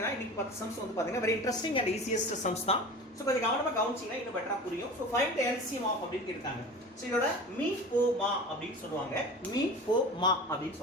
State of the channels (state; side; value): normal; both; correlation 0.35